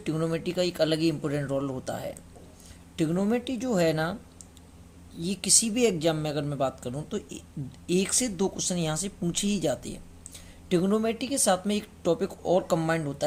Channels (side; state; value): both; identical; correlation 1.00